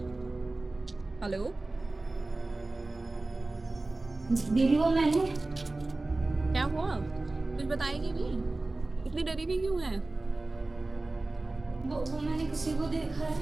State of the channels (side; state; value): left; quieter; 3.1 dB